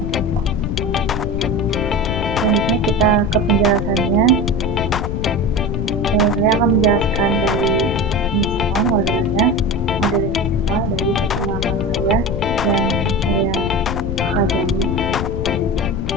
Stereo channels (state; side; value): noise; left; rumble, 3 dB below the sound